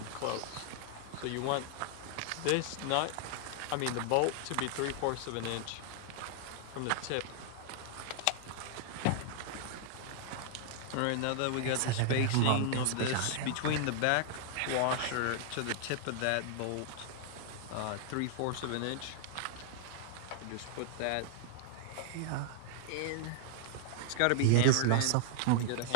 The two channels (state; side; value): different; both; correlation -0.01